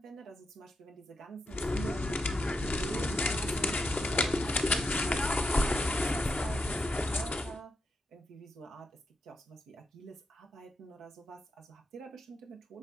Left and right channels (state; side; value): normal; both; correlation 0.83